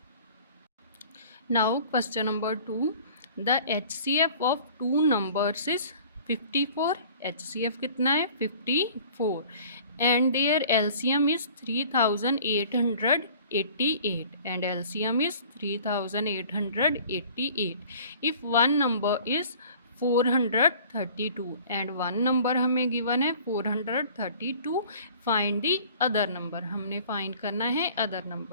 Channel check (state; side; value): inverted; both; correlation -0.49